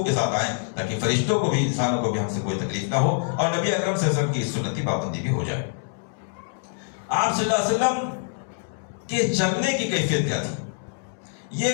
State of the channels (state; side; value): silent; right; 62 dB below the other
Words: کے ساتھ آئیں تاکہ فرشتوں کو بھی، انسانوں کو بھی ہم سے کوئی تکلیف نہ ہو، اور نبی اکرم صلی اللہ علیہ وسلم کی سنتی پابندی بھی ہو جائے. آپ صلی اللہ علیہ وسلم کے چلنے کی کیفیت کیا تھی؟ یہ